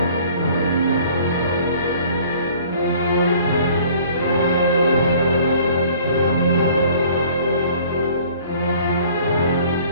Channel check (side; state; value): both; inverted; correlation -0.53